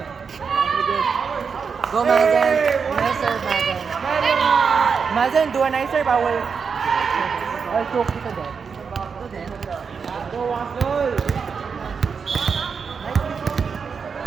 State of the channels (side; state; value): left; quieter; 5.9 dB